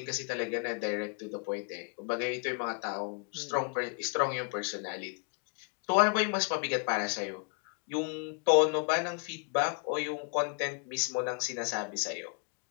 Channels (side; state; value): right; quieter; 39.2 dB